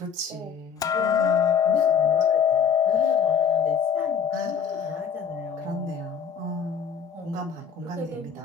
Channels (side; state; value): right; quieter; 7.1 dB